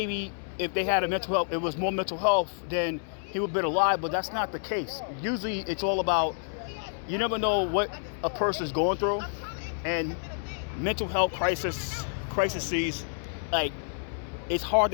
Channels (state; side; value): silent; right; 59 dB below the other